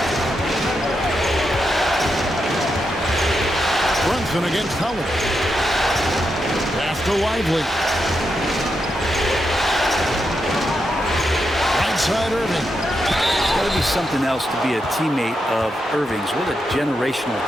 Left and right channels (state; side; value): normal; both; correlation 0.84